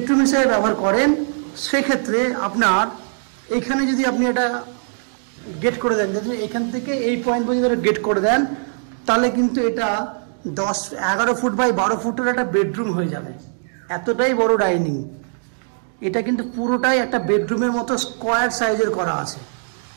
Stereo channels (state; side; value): silent; left; digital silence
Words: হিসেবে ব্যবহার করেন সেক্ষেত্রে আপনার এখানে যদি আপনি এটা গেট করে দেন, এখান থেকে এই পয়েন্ট পর্যন্ত গেট করে দেন, তাহলে কিন্তু এটা 11 ফুট বাই 12 ফুটের একটা বেডরুম হয়ে যাবে। এতটাই বড় ডাইনিং। এটা কিন্তু পুরোটাই একটা বেডরুমের মতো স্কোয়ার সাইজের করা আছে।